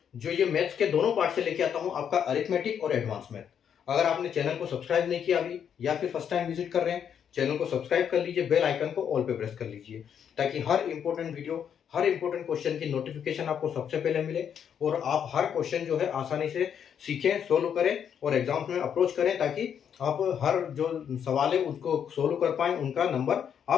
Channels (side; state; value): right; quieter; 8.3 dB